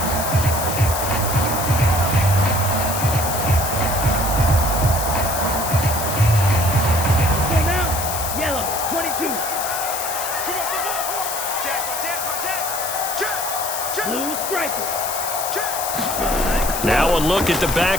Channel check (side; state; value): left; noise; hiss, 4 dB below the sound